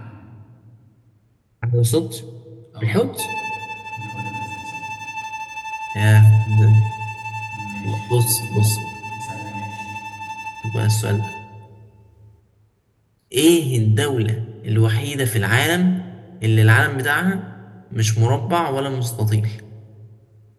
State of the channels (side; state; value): both; identical; correlation 1.00